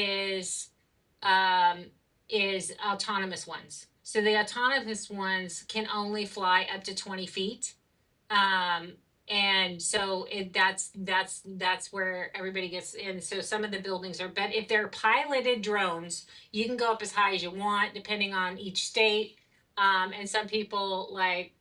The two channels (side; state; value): both; identical; correlation 1.00